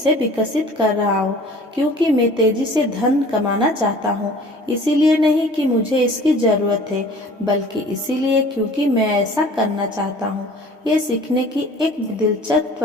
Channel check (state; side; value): normal; both; correlation 0.47